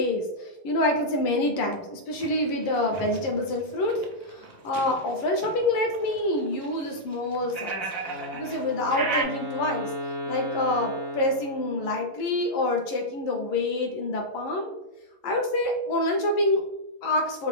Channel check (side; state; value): right; late; 11 ms